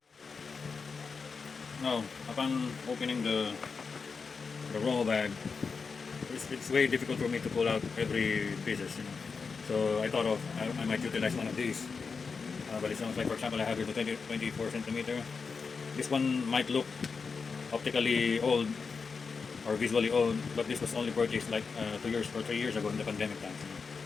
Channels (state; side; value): quieter; right; 5.1 dB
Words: Now, upon opening the roll bag, it's way difficult for me to pull out every pieces, you know. So I thought of I might utilize one of these balisongs. Like for example, I have here the 24 centimeter. This one might look optically old or visually old, but this was only purchased like 2 years or 3 years ago in the pandemic times. You know.